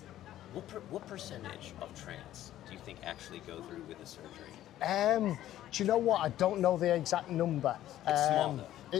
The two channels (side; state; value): right; quieter; 13.1 dB